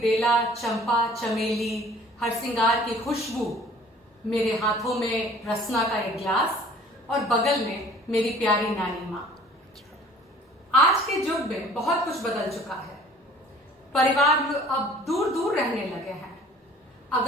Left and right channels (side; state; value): both; normal; correlation 0.51